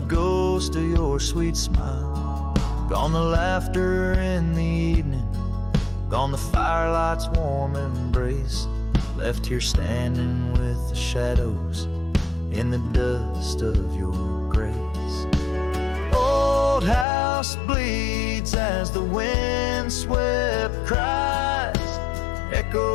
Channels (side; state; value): right; drops out; at 17.1 s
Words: of your sweet smile. Gone the laughter in the evening, gone the firelight's warm embrace, left here standing with the shadows in the dust of your grace. Old house bleeds as the wind-swept cries